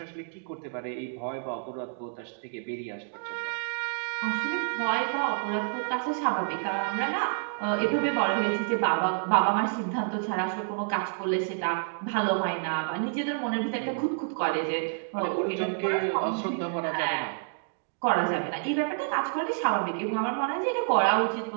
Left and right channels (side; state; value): left; silent; digital silence